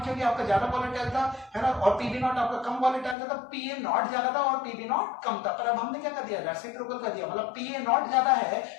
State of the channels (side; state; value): right; drops out; at 3.2 s